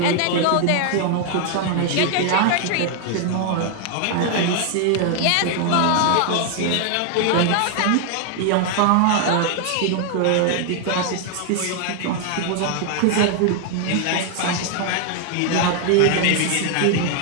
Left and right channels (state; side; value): different; both; correlation 0.00